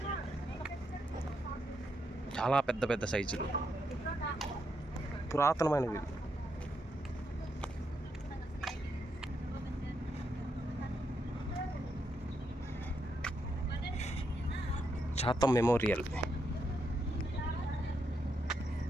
చాలా పెద్ద సైజులు, పురాతనమైనవి. చాతం మెమోరియల్.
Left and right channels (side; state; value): both; normal; correlation 0.80